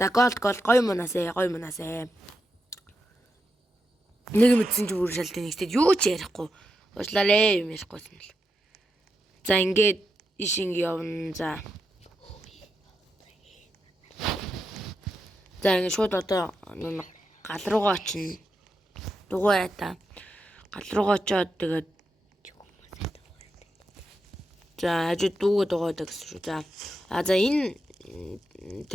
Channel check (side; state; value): both; normal; correlation 0.85